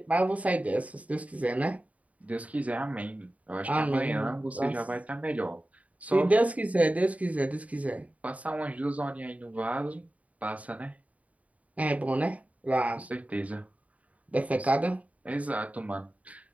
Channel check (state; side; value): late; left; 0.069 ms